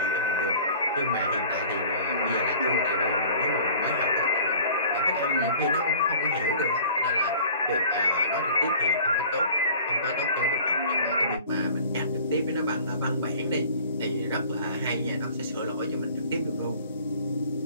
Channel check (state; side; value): inverted; both; correlation -0.47